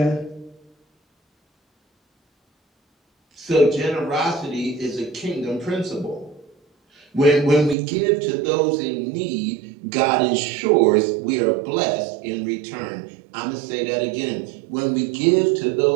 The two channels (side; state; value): left; drops out; at 7.8 s